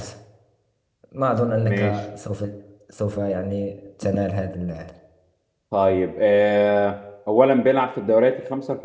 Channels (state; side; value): identical; both; correlation 1.00